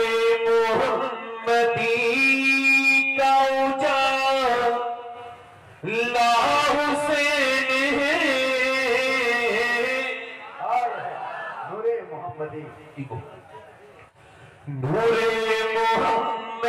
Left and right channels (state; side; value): identical; both; correlation 1.00